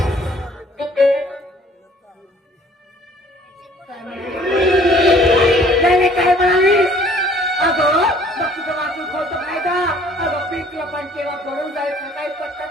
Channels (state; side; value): normal; both; correlation 0.56